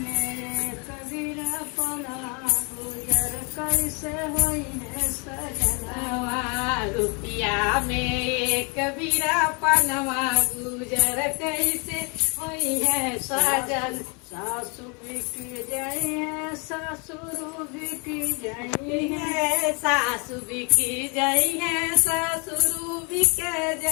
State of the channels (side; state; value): right; quieter; 33.5 dB